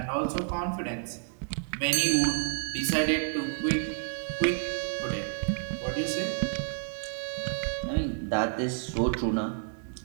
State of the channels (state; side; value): silent; left; 58 dB below the other